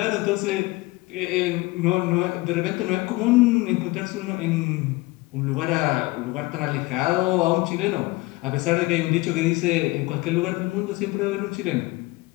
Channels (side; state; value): right; quieter; 21.7 dB